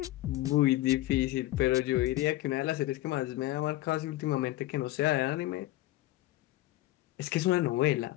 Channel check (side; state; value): right; quieter; 16.4 dB